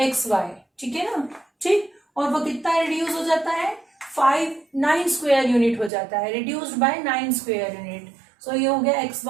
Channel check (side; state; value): left; drops out; at 5.9 s